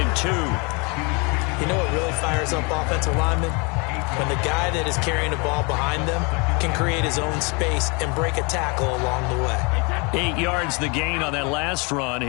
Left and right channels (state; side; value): quieter; right; 30.9 dB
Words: 2. You know what really fires up offensive linemen? When the guy that is carrying the ball behind them can create his own space and break a tackle along the way. 8 yards the gain on that last run.